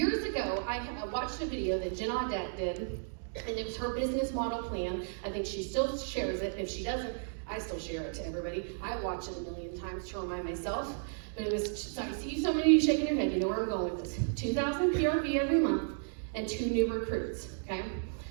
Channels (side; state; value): left; silent; digital silence